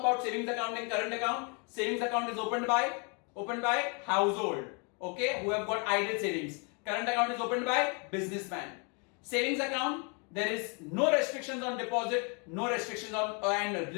savings account and current account, savings account is opened by household, okay, who have got idle savings. Current account is opened by businessman. Savings account, there is no restrictions on deposit, no restrictions on and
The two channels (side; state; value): right; quieter; 35.6 dB